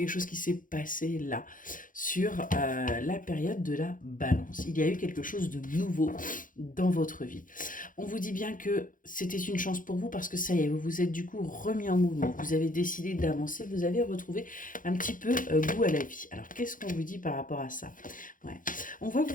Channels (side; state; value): right; late; 0.39 ms